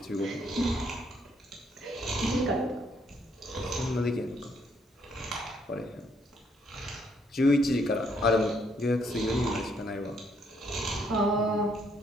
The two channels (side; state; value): both; normal; correlation 0.70